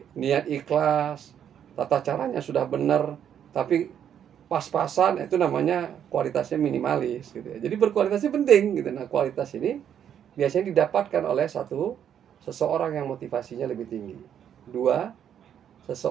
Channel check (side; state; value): left; quieter; 9.2 dB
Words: niat ikhlas, tata caranya sudah benar, tapi pas-pasan, itu namanya kualitasnya minimalis, gitu ya. Jadi berkualitasnya penting, gitu. Nah, kualitas ini biasanya didapatkan oleh seseorang yang motivasinya lebih tinggi. 2,